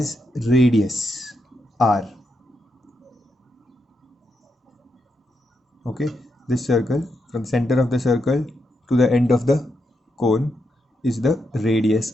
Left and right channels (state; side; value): normal; both; correlation 0.83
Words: radius r. Okay, this circle, from the center of the circle to the end of the cone, is the